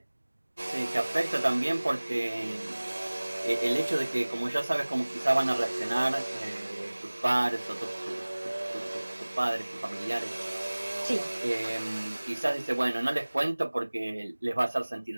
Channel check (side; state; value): both; inverted; correlation -1.00